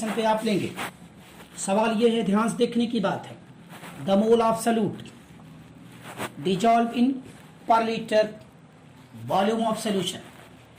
पे आप लेंगे। सवाल ये है, ध्यान से देखने की बात है, the mole of solute dissolve in पर लीटर वॉल्यूम ऑफ सॉल्यूशन।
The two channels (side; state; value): both; identical; correlation 1.00